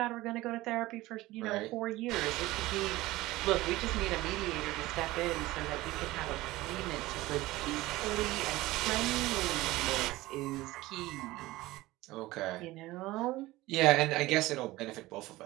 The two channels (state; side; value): quieter; left; 18.5 dB